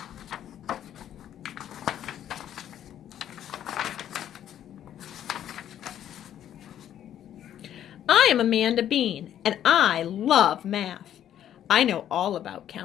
I am Amanda Bean, and I love math. I know all about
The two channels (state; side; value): quieter; right; 10.7 dB